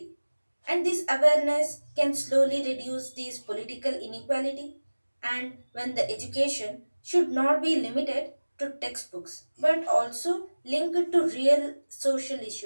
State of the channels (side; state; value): both; inverted; correlation -1.00